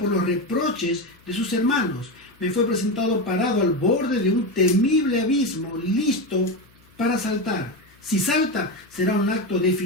los reproches de sus hermanos. Me fue presentado parado al borde de un temible abismo, listo para saltar. Si salta, será un acto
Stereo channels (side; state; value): left; noise; hum, 30 dB below the sound